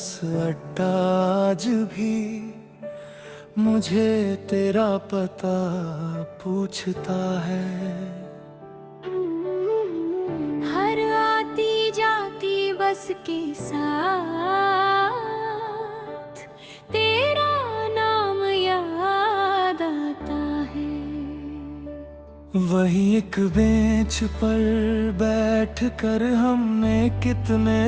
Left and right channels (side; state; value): both; identical; correlation 1.00